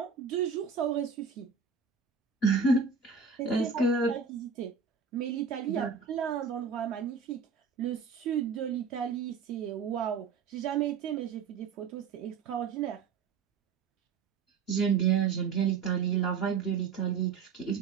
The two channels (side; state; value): left; quieter; 5.7 dB